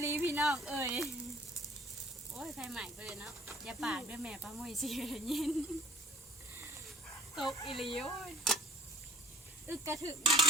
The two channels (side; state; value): both; normal; correlation 0.52